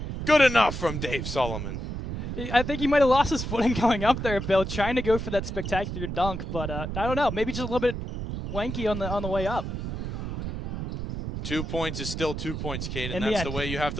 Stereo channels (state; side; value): noise; right; rumble, 5 dB below the sound